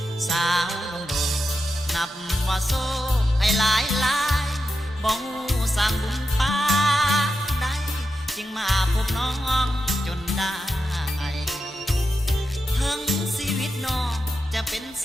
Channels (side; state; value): both; normal; correlation 0.88